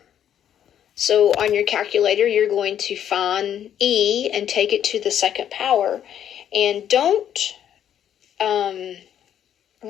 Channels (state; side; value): quieter; right; 9.9 dB